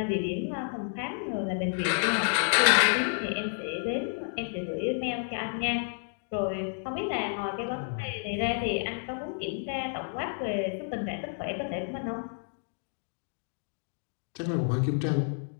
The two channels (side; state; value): right; silent; 58 dB below the other